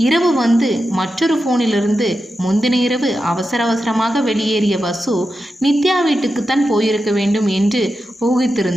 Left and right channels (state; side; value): normal; both; correlation 0.90